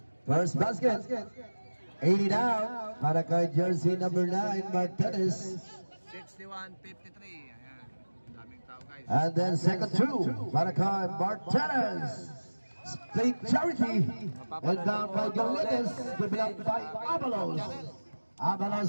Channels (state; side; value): inverted; both; correlation -1.00